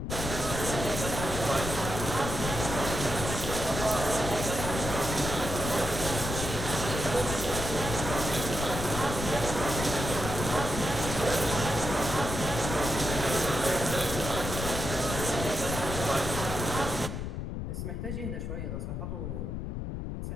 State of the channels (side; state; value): left; noise; rumble, 4 dB below the sound